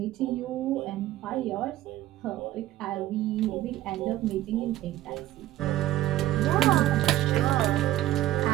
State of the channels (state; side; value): quieter; left; 14.6 dB